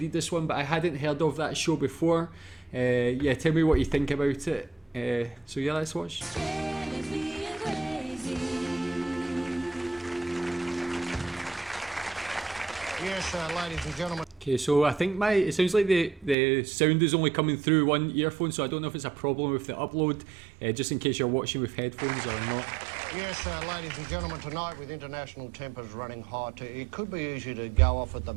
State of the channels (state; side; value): drops out; left; at 16.4 s